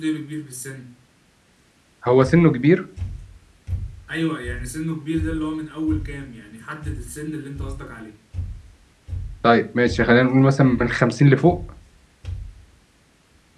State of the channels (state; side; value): identical; both; correlation 1.00